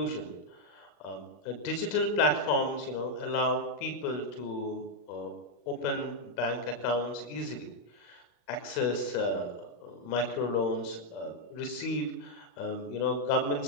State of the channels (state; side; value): late; right; 35 ms